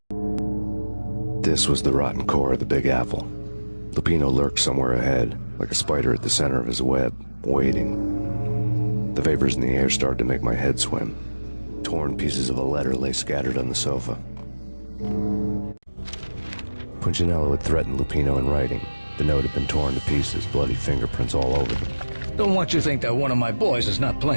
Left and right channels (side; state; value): both; inverted; correlation -1.00